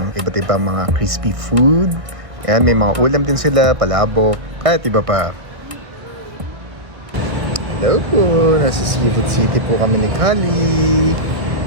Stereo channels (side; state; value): left; late; 1.6 ms